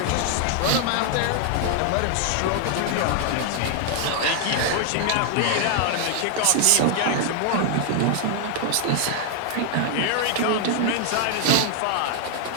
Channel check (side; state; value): both; different; correlation 0.00